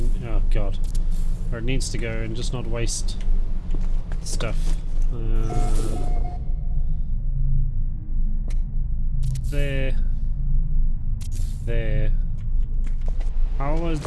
oh god, where it needs to go and just not waste stuff. There. How was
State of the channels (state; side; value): identical; both; correlation 1.00